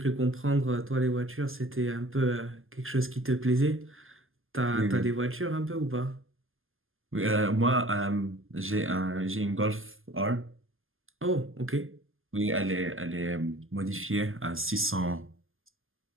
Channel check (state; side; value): late; left; 0.59 ms